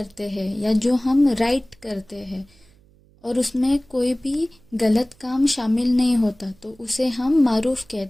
ہیں یا جو ہم رائٹ کرتے ہیں، اور اس میں کوئی بھی غلط کام شامل نہیں ہوتا، تو اسے ہم معروف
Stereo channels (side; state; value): right; noise; hum, 30 dB below the sound